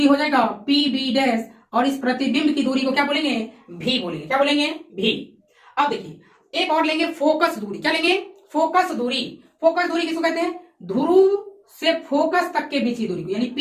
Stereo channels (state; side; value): identical; both; correlation 1.00